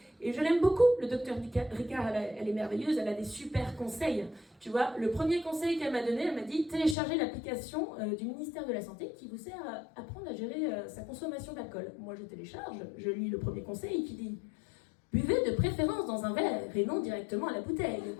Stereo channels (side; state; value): right; drops out; at 7.0 s